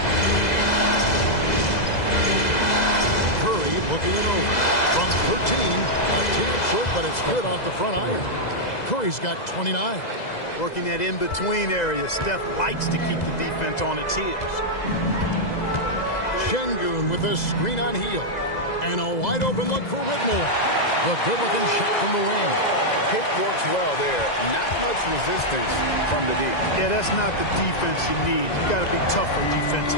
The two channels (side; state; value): right; late; 2.0 ms